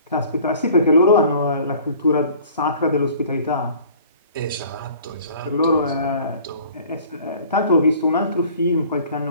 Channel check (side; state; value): both; inverted; correlation -0.50